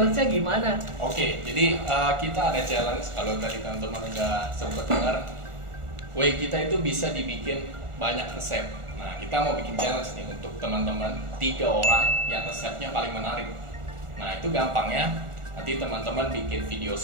gimana? Oke, jadi kita ada challenge. Kalau tadi teman-teman udah sempat dengar, way kita itu bisa dibikin banyak resep. Nah, kita mau bikin challenge nih untuk teman-teman 3 orang yang resepnya paling menarik. Nah, itu gampangnya. Nanti teman-teman bikin video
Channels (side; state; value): left; late; 1.4 ms